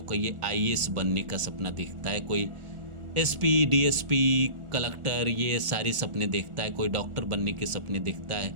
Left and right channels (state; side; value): late; left; 1.4 ms